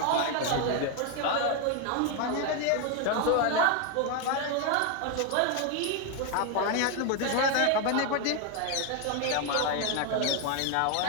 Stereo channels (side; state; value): both; different; correlation 0.01